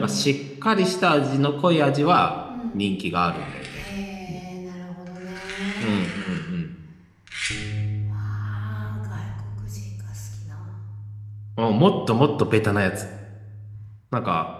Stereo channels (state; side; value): identical; both; correlation 1.00